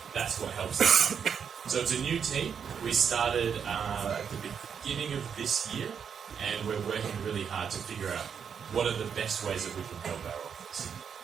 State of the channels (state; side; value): quieter; left; 7.2 dB